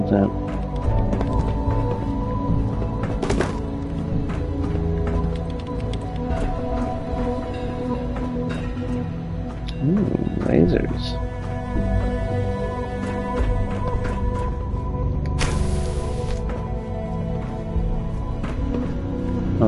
that's that. lasers. Oh,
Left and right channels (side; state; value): both; identical; correlation 1.00